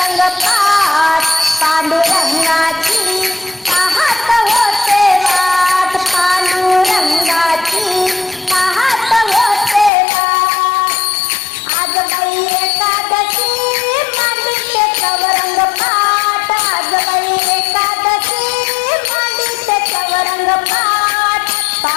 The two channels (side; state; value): right; drops out; at 9.9 s